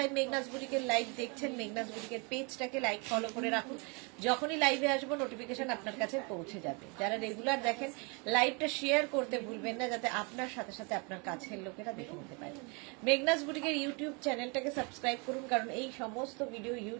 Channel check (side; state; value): left; quieter; 32.2 dB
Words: মেঘনাস বুটিকের লাইভ দেখছেন, মেঘনাস বুটিকের পেজটাকে লাইক ফলো করে রাখুন, যখনই লাইভে আসবো নোটিফিকেশন আপনার কাছে পৌঁছে যাবে। যারা রেগুলার দেখেন, লাইভটা শেয়ার করতে ভুলবেন না, যাতে আপনার সাথে সাথে আপনার কাছের লোকেরা দেখে নিতে পারে। মেঘনাস বুটিকের ইউটিউব চ্যানেলটাকে সাবস্ক্রাইব করুন, কারণ এই সমস্ত ভিডিও